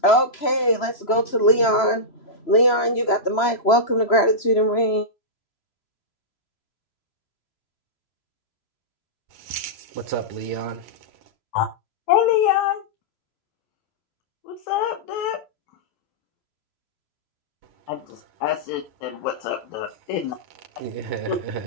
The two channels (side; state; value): right; late; 3.0 ms